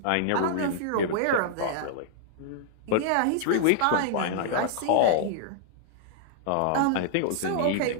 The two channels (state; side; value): different; both; correlation -0.01